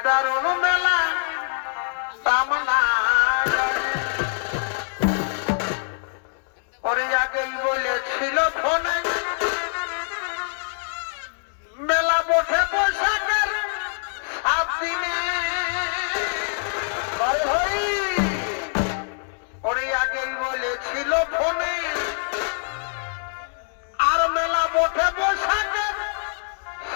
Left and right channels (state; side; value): silent; right; digital silence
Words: দারুণ মেলা সামনা ওরে আগেই বলেছিল ফোনে মেলা বসে পোশাকের 7 দিনে ওরে আগেই বলেছিল ফোনে আর মেলা বসে পোশাকের